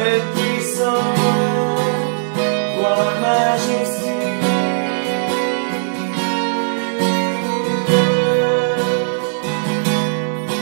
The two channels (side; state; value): left; silent; digital silence